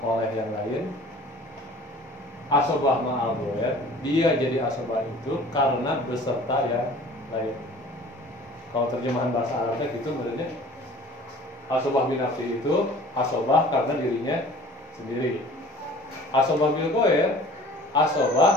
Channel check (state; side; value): normal; both; correlation 0.47